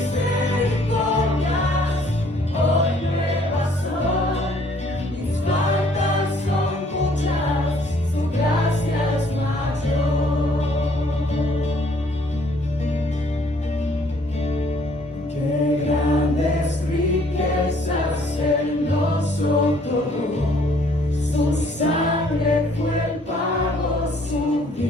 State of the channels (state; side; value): normal; both; correlation 0.61